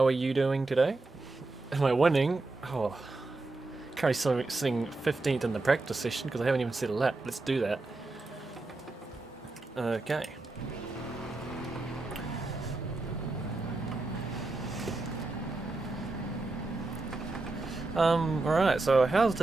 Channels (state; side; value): quieter; left; 3.2 dB